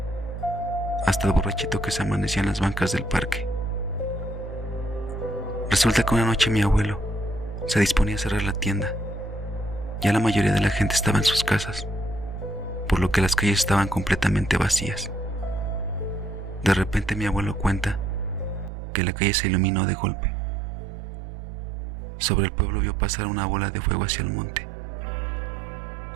hasta el borrachito que se amanecía en las bancas del parque. Resulta que una noche mi abuelo se disponía a cerrar la tienda. Ya la mayoría de la gente estaba en sus casas, por lo que las calles estaban completamente vacías. De repente mi abuelo cuenta que la calle se iluminó de golpe. Sobre el pueblo vio pasar una bola de fuego hacia el monte.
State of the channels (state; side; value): drops out; left; at 18.7 s